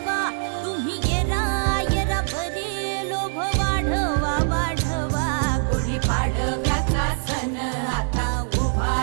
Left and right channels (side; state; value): left; silent; digital silence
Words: तुम्ही येरा येरा भरी लोभ वाढवा वाढवा. गुढी पाडव्याचा सण आता